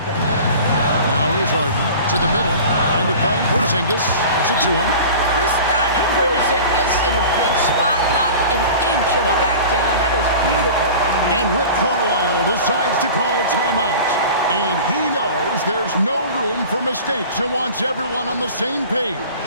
Now here's Harden to the middle. Trying to find Porzingis. Gets it to him. Kristaps Porzingis in a big spot, not an inch of back down. That is beautiful. And Rick Carlisle decides to call timeout. And he knows there's no room for mistakes and wants everyone on the same page.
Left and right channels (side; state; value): both; inverted; correlation -0.39